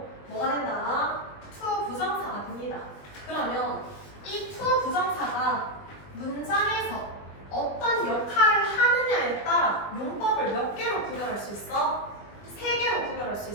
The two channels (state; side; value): late; right; 20 ms